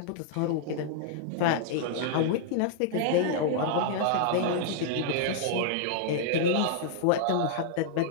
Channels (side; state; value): both; different; correlation -0.01